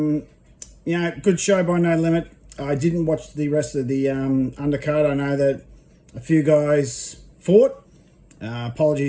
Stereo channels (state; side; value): identical; both; correlation 1.00